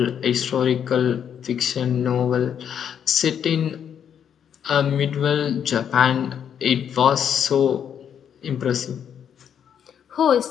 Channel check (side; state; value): right; quieter; 8.5 dB